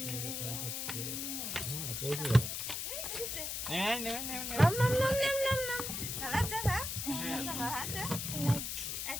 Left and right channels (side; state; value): left; noise; hiss, 3 dB below the sound